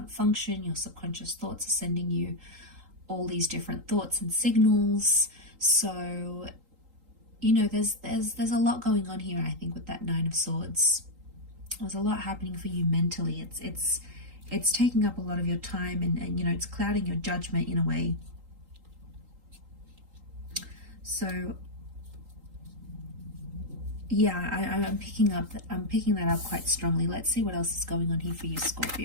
function. Your subconscious thoughts are sending you all these different thoughts and signals. So, you know, there's a lot going on here. I think with that Nine of Swords, there's a lot happening for you mentally. It's taking up a lot of your time, and you know, it's clouding your judgment in a way. So yeah, I'm picking that up quite strongly. Let's see what else is going on here for you,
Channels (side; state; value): left; late; 3.8 ms